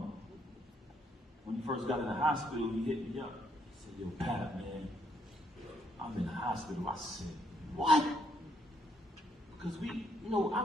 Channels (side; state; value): both; normal; correlation 0.72